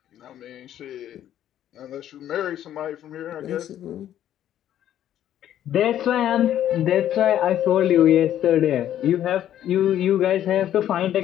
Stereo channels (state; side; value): quieter; right; 11.4 dB